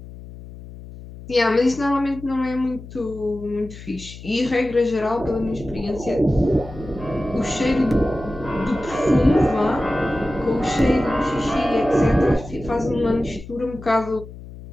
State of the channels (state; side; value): noise; left; hum, 15 dB below the sound